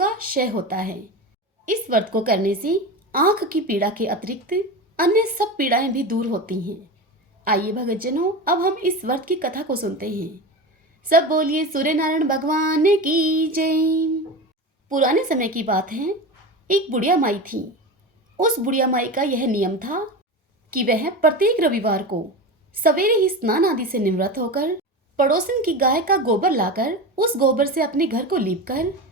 क्षय होता है। इस व्रत को करने से आंख की पीड़ा के अतिरिक्त अन्य सब पीड़ाएं भी दूर होती हैं। आइए भगतजनों, अब हम इस व्रत की कथा को सुनते हैं। सब बोलिए सूर्य नारायण भगवान की जय। पुराने समय की बात है, एक बुढ़िया माई थी। उस बुढ़िया माई का यह नियम था कि वह प्रत्येक रविवार को सवेरे ही स्नान आदि से निवृत्त होकर पड़ोसन की गाय का गोबर लाकर उस गोबर से अपने घर को लीपकर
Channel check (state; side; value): normal; both; correlation 0.25